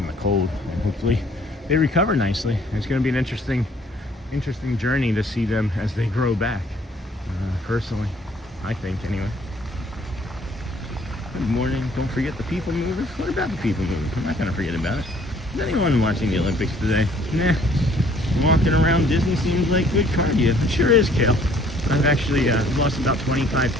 the cold, and hopefully they recover nicely. It's going to be an interesting journey to see them as they grow back. Personally, I think anyway. Good morning. Don't forget the people movers. What about the people movers? I'm not going to forget about it. Is anyone watching the Olympics today? Nah. Walking around Disney seems like good cardio. It sure is, Kale. I've actually lost about 25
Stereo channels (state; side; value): normal; both; correlation 0.59